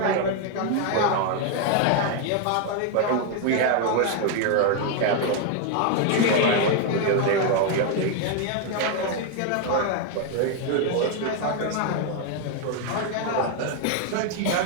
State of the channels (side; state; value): both; different; correlation 0.01